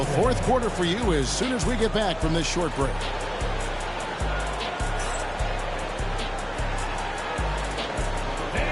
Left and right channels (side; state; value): both; identical; correlation 1.00